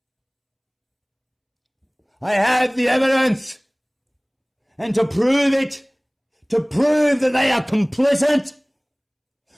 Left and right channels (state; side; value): identical; both; correlation 1.00